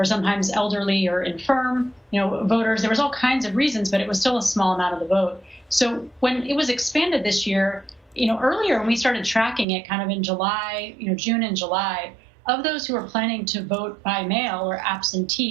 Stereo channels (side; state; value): left; drops out; at 9.7 s